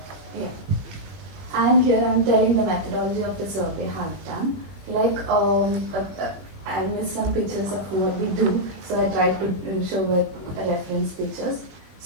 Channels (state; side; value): late; left; 21 ms